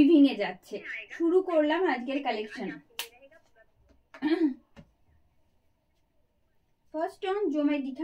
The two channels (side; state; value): both; identical; correlation 1.00